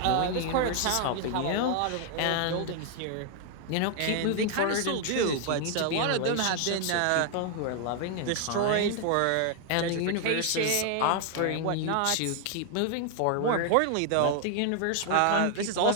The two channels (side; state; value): both; different; correlation 0.00